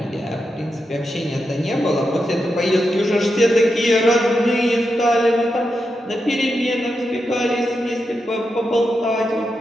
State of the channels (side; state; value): both; normal; correlation 0.87